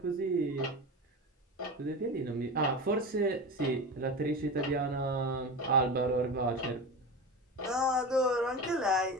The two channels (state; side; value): normal; both; correlation 0.26